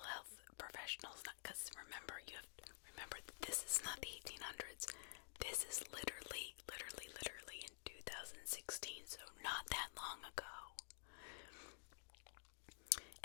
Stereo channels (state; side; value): silent; right; digital silence